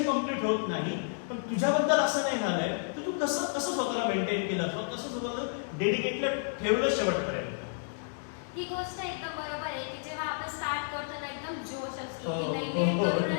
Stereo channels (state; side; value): silent; right; digital silence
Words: कम्प्लीट होत नाही. पण तुझ्याबद्दल असं नाही झालंय, तर तू कसं कसं स्वतःला मेंटेन केलं, कसं स्वतःला डेडिकेटेड ठेवलं शेवटपर्यंत? ही गोष्ट एकदम बरोबर आहे की जेव्हा आपण स्टार्ट करतो ना एकदम जोश असतो की हो, नाही हो, मी हो, करूनच